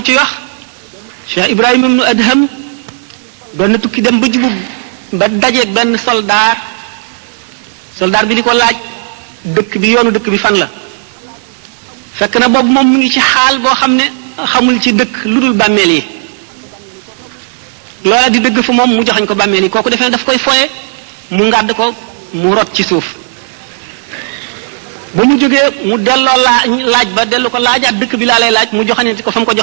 ci wax Cheikh Ibrahima ibnu Adham doon na tukki dem ba jublu ba dajeeg benn soldaar bi di ko laaj dëkk bi yoonu dëkk bi fan la fekk na boobu moom mu ngi ci xaal boo xam ne xamul ci dëkk lu dul bàmmeel yi loola di dëgg fa moom mu joxañ ko bàmmeel yi kooku defee ne daf koy foye mu ngàdd ko mu rot ci suuf ba mu jógee mu delloo laaj ba dellu ko laajaat dëkk bi laa lay laaj mu joxañati ko fa mu ko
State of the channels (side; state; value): left; silent; digital silence